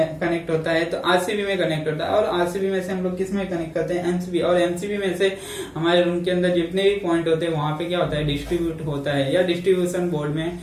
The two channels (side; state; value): both; identical; correlation 1.00